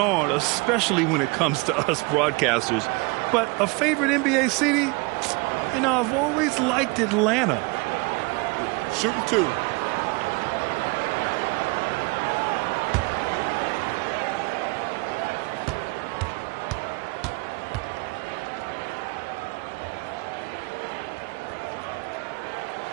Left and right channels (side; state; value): left; quieter; 27.6 dB